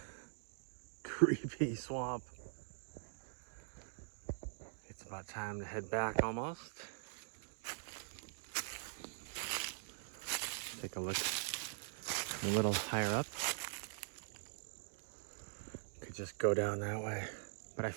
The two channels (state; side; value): silent; left; digital silence